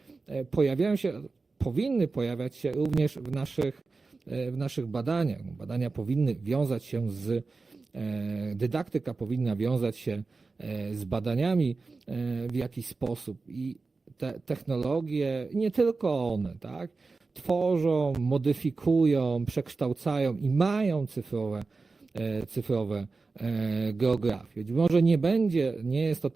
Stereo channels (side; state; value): left; quieter; 4.0 dB